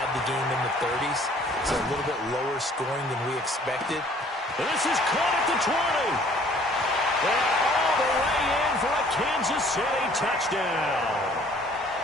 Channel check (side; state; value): both; normal; correlation 0.57